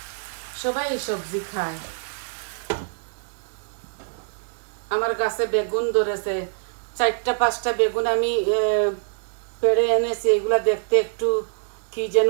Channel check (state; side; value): silent; left; digital silence